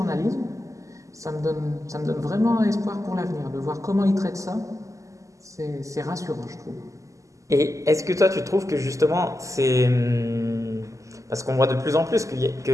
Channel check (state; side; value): late; left; 0.16 ms